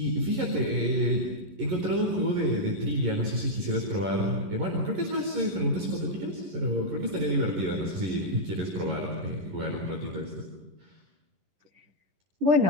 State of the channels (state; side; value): late; left; 11 ms